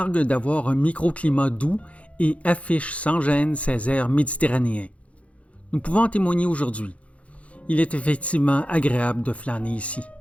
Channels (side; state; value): right; late; 0.064 ms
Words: d'avoir un microclimat doux et affiche sans gêne ses airs méditerranéens. Nous pouvons en témoigner aujourd'hui. Il est effectivement agréable de flâner ici.